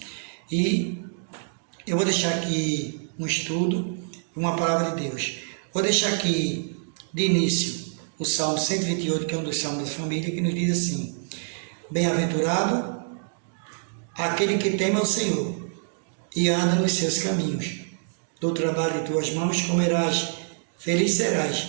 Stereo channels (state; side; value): silent; left; digital silence